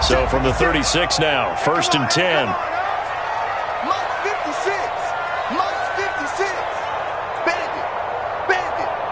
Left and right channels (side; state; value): both; identical; correlation 1.00